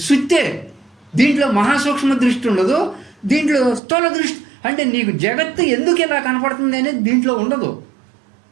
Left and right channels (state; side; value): drops out; left; at 3.8 s